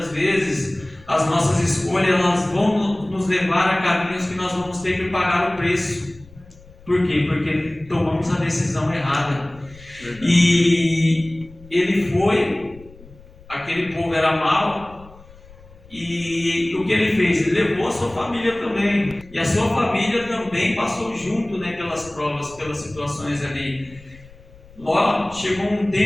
vezes as nossas escolhas elas vão nos levar a caminhos que nós vamos ter que pagar o preço. Por quê? Porque tomamos a decisão errada. Verdade. E ele foi, aquele povo era mau, e o que ele fez? Ele levou a sua família também, e a sua família também passou junto, né, pelas provas, pelas situações ali. Ló, chegou um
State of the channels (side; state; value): left; noise; rumble, 22 dB below the sound